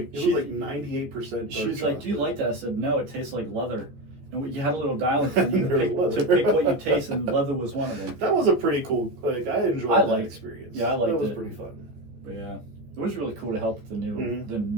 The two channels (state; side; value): late; left; 14 ms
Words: She was like, "Do you like that?" I said, "No, it tastes like leather." And you had a little dial in front of you to pick what you taste, and leather was one of them. That was a pretty cool. I enjoyed that experience. Yeah, I liked it. That was pretty fun. But yeah, it was really cool to help with the